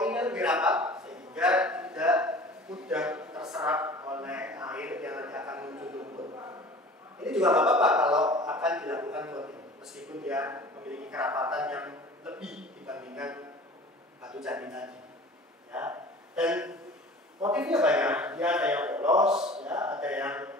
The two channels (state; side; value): normal; both; correlation 0.43